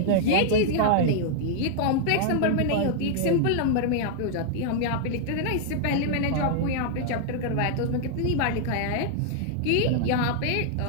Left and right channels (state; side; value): different; both; correlation -0.01